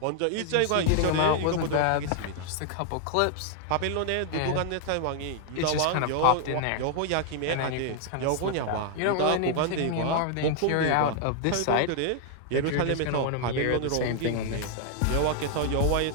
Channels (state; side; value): different; both; correlation 0.00